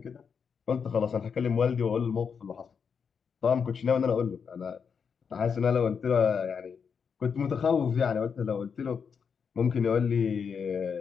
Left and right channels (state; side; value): quieter; right; 6.4 dB